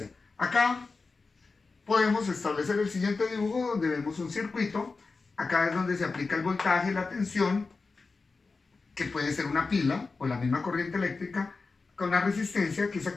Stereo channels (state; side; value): quieter; right; 4.1 dB